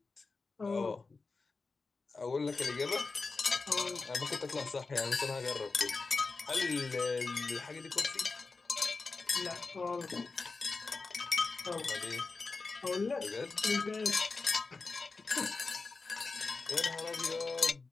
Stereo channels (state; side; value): quieter; right; 4.0 dB